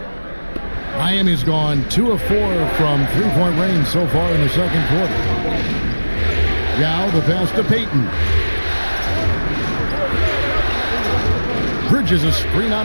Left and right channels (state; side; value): inverted; both; correlation -1.00